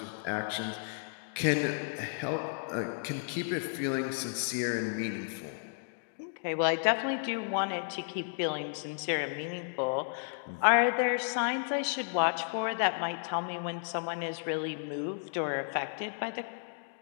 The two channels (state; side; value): silent; right; digital silence